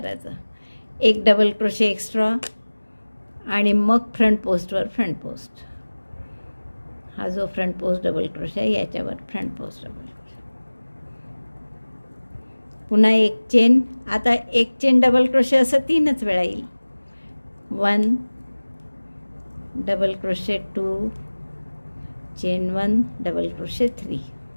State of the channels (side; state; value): both; inverted; correlation -1.00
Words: एक डबल क्रोशे एक्स्ट्रा आणि मग फ्रंट पोस्टवर फ्रंट पोस्ट. हा जो फ्रंट पोस्ट डबल क्रोशे आहे याच्यावर फ्रंट पोस्ट डबल क्रोशे. पुन्हा एक चेन. आता एक चेन डबल क्रोशे असं 3च वेळा येईल. 1 double crochet 2, chain 1, double crochet 3,